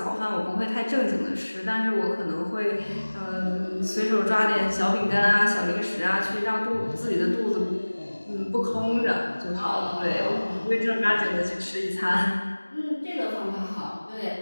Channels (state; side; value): inverted; both; correlation -1.00